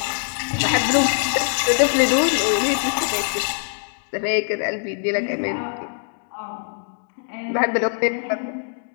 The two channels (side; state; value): right; silent; 64 dB below the other